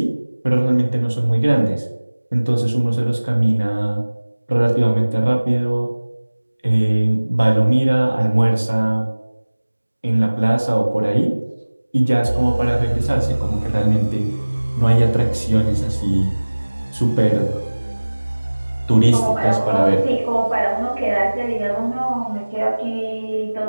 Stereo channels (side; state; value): both; inverted; correlation -1.00